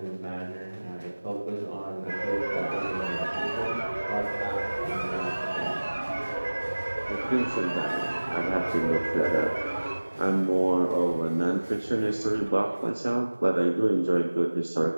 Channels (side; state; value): both; inverted; correlation -1.00